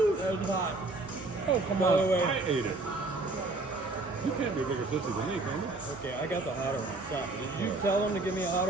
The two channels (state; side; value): quieter; left; 3.1 dB